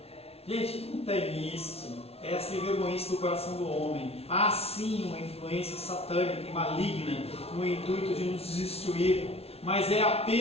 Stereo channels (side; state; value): right; late; 0.30 ms